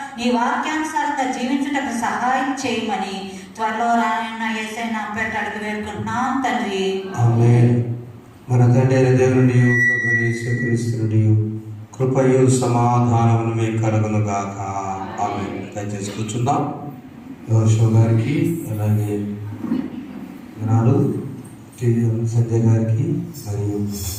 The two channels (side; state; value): both; identical; correlation 1.00